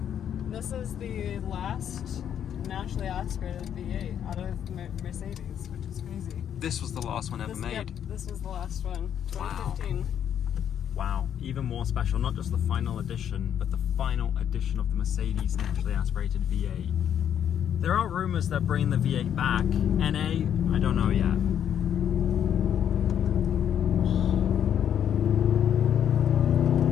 this is the last naturally aspirated V8 out of Mercedes, which is crazy. this was the last one ever made. Yep, this was the last one, 2015. Wow, even more special, not just the final edition, but the final edition of the Mercedes naturally aspirated V8. There are rumors that bringing the V8 back. NA, I don't know yet.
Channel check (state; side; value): quieter; right; 9.3 dB